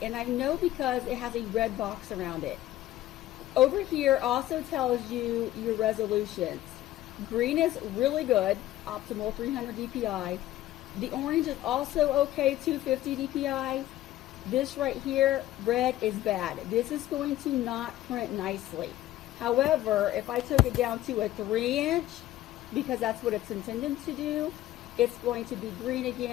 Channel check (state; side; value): quieter; right; 14.5 dB